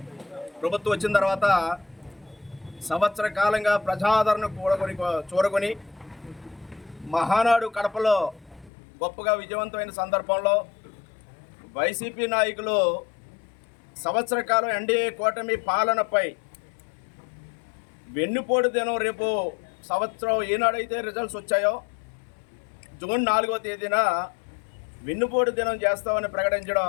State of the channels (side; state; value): right; drops out; at 8.7 s